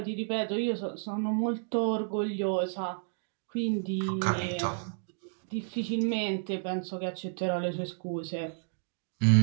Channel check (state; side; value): silent; left; digital silence